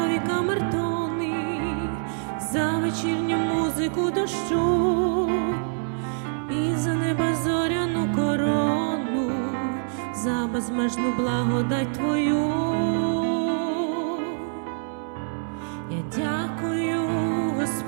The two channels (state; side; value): silent; left; digital silence